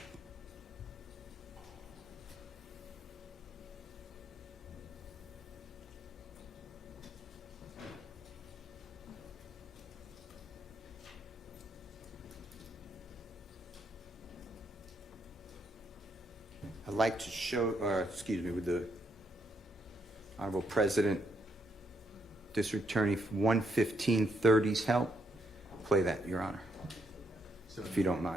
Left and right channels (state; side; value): normal; both; correlation 0.76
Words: like to show, with the Honorable President, District Attorney 11530's help, play that, Your Honor, if you don't mind.